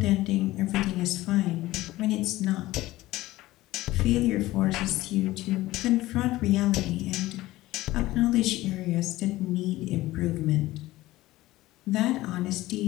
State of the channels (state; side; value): quieter; right; 17.3 dB